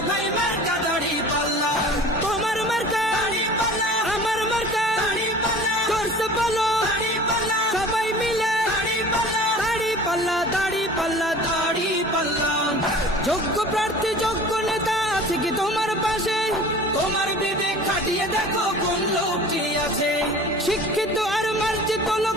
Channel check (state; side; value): normal; both; correlation 0.42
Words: ভাই মার্কা দাড়ি পাল্লা। তোমার মার্কা দাড়ি পাল্লা, আমার মার্কা দাড়ি পাল্লা, করতে বলো দাড়ি পাল্লা, সবাই মিলে দাড়ি পাল্লা, দাড়ি পাল্লা, দাড়ি পাল্লা, দাড়ি পাল্লা। যোগ্য প্রার্থী যোগ্য নেতা আছে কি তোমার পাশে? তোমার বিবেক খাটিয়ে দেখো কোন লোকটি আছে। শিক্ষিত আর মার্জিত